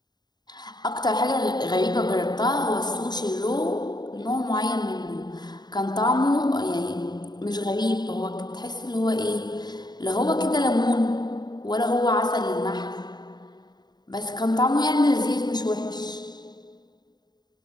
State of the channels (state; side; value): late; right; 0.20 ms